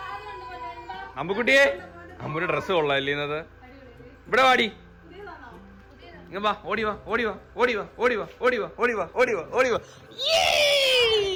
അമ്പുക്കുട്ടിയെ, അമ്പുന്റെ ഡ്രസ്സ് കൊള്ളാല്ലേ ഇന്നത്? ഇവിടെ വാടി, ഇങ്ങ വാ, ഓടിവാ.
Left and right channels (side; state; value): both; identical; correlation 1.00